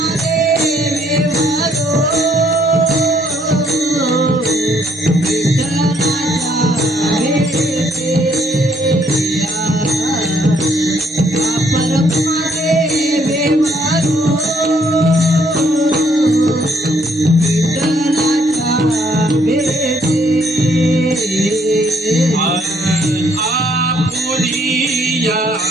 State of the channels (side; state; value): both; normal; correlation 0.67